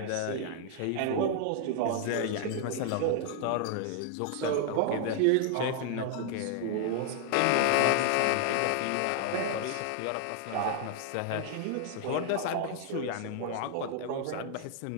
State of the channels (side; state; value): both; different; correlation 0.00